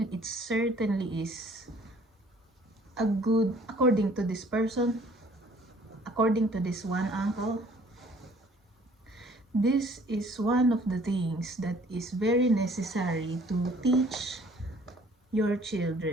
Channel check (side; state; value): both; normal; correlation 0.57